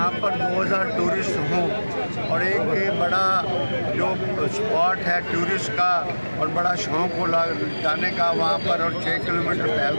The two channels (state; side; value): inverted; both; correlation -1.00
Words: पर 2000 टूरिस्ट हों और एक बड़ा जो स्पॉट है टूरिस्ट का और बड़ा शौक़ हो जाने का वहाँ पर, और 6 किलोमीटर